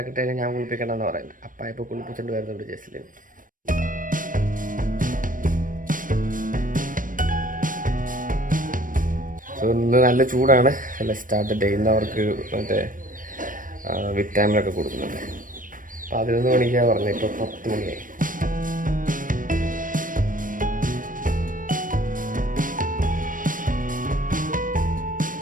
ഞാൻ കുളിപ്പിക്കണമെന്ന് പറയുന്നത്. അപ്പ ഇപ്പോൾ കുളിപ്പിച്ചുകൊണ്ട് വരുന്നുണ്ട് ജസ്റ്റിന്. സോ ഇന്ന് നല്ല ചൂടാണ്. അല്ല സ്റ്റാർട്ട് ഡേ. ഇന്ന് അവർക്ക് മറ്റേ വിറ്റാമിനൊക്കെ കൊടുക്കുന്നുണ്ട്. 11 മണിക്കാണ് പറഞ്ഞത്, ഇപ്പോൾ 10 മണിയായി.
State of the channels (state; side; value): late; left; 0.39 ms